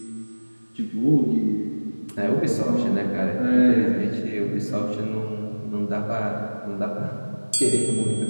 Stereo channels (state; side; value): inverted; both; correlation -1.00